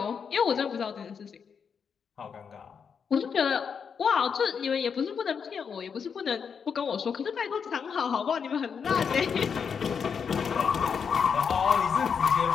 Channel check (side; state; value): right; quieter; 6.5 dB